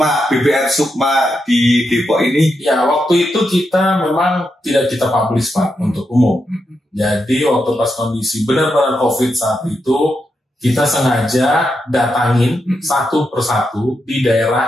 BPR Sukma di Depok ini. Ya, waktu itu kita memang tidak kita publish Pak untuk umum. Jadi waktu pas kondisi benar-benar COVID saat itu, kita sengaja datangin satu persatu di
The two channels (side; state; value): both; normal; correlation 0.84